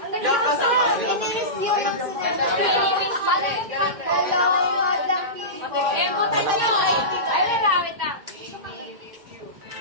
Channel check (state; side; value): late; left; 2.1 ms